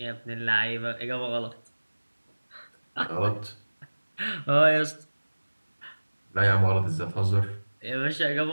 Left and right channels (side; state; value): both; inverted; correlation -1.00